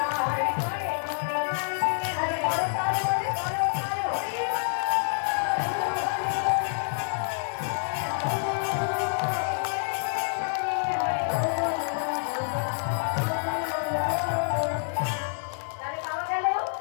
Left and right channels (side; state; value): right; silent; digital silence